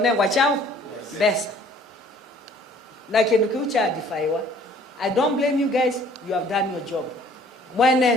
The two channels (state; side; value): normal; both; correlation 0.55